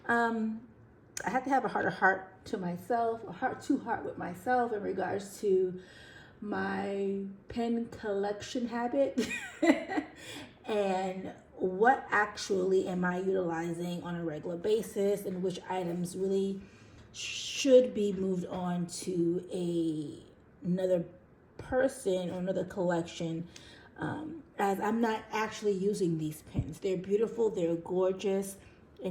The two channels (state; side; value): identical; both; correlation 1.00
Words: I had to have a heart to myself, a heart-to-heart with myself in regards to my pen collection habit and what actually am I utilizing on a regular basis and which items really should be moved on to another person or another collection, as I'm not actually using these pins. They're beautiful, they're gorgeous,